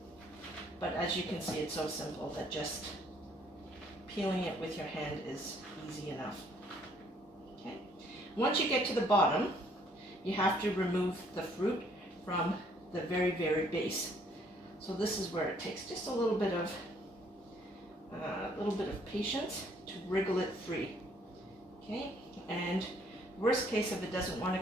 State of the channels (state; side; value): normal; both; correlation 0.64